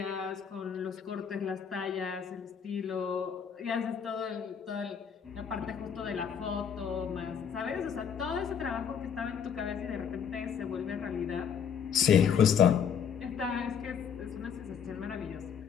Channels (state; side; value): quieter; right; 7.5 dB